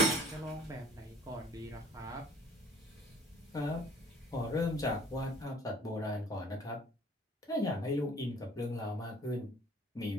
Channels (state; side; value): normal; both; correlation 0.53